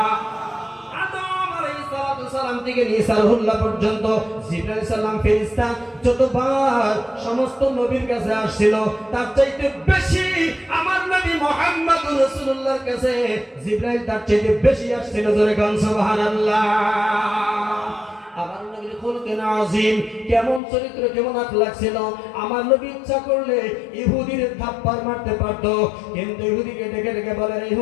আদম আলাইহিস সালাম থেকে নিয়ে সারহুল্লাহ পর্যন্ত জিবরাইল আলাইহিস সালাম ফেরেশতা যতবার সমস্ত নবীর কাছে আসছিল, তার চাইতে বেশি আমার নবী মুহাম্মদুর রাসূলুল্লাহর কাছে জিবরাইল তার চাইতে বেশি আসছিল। জোরে গান সুবহানাল্লাহ। আমার নবীর খুলুকিন আযীম, কেমন চরিত্র, কেমন আখলাক ছিল। আমার নবী ইচ্ছা করলে ইহুদির থাপ্পড় মারতে পারত, কিন্তু ইহুদিকে ডেকে ডেকে বলেন,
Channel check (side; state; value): right; drops out; at 20.6 s